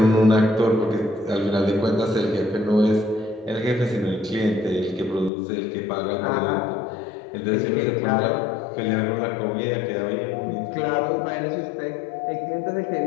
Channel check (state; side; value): drops out; right; at 5.3 s